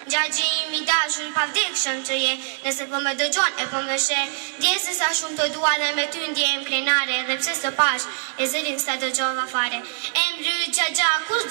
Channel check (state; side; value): silent; left; 63 dB below the other